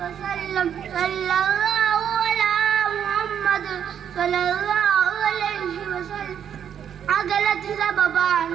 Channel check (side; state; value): left; quieter; 8.7 dB